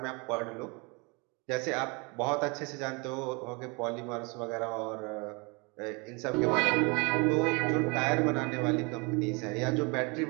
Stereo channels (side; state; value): left; quieter; 29.5 dB